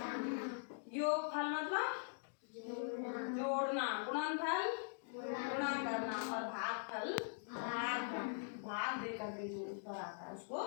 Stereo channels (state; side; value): silent; right; digital silence